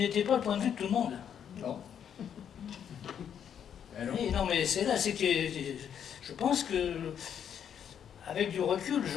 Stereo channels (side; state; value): right; quieter; 8.6 dB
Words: pas le point de vue de tout le monde. Non. Et non, mais c'est là, c'est que je pense que, avec du recul,